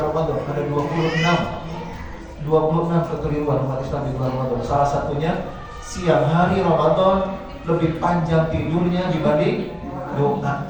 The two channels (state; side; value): identical; both; correlation 1.00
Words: Ramadan. Ada 26 kekeliruan umat Islam di bulan Ramadan. Salah satunya siang hari Ramadan lebih panjang tidurnya dibanding doanya.